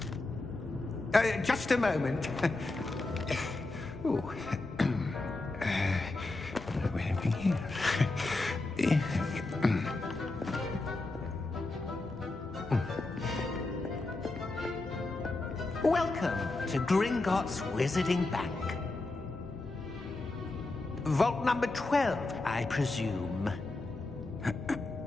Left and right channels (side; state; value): right; quieter; 3.1 dB